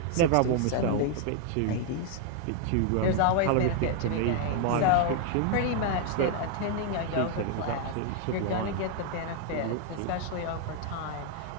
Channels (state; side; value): different; both; correlation 0.00